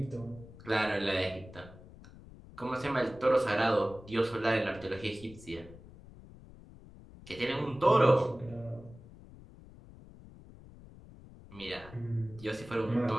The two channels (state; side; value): noise; left; rumble, 19 dB below the sound